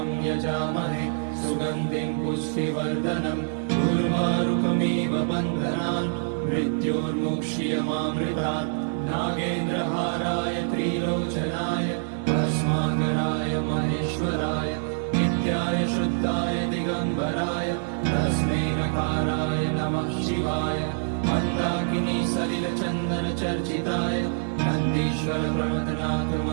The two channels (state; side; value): silent; left; 61 dB below the other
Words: यजामहे सुगन्धिं पुष्टिवर्धनम् उर्वारुकमिव बन्धनान् मृत्योर्मुक्ष्यमामृतात्। नागेन्द्रहाराय त्रिलोचनाय भस्माकराय महेश्वराय नित्याय शुद्धाय दिगम्बराय तस्मै नकाराय नमः शिवाय। मन्दाकिनी सलिलचन्दन चर्चिताय नन्दीश्वर प्रमथनाथ